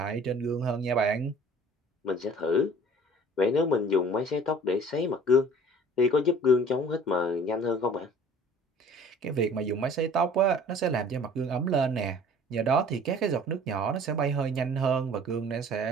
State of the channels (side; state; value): both; normal; correlation 0.49